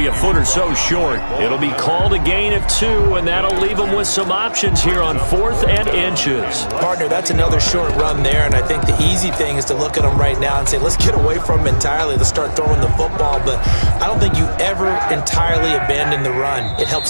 a foot or so short. It'll be called a gain of 2, and that'll leave him with some options here on 4th and inches. Partner, that's another short run there, and I think the easy thing is to look at him right now and say, let's get away from him entirely. Let's start throwing the football, but I don't think you ever entirely abandon the run. It helps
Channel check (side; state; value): both; inverted; correlation -1.00